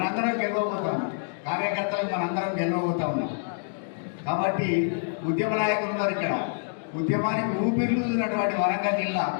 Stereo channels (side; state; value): right; silent; digital silence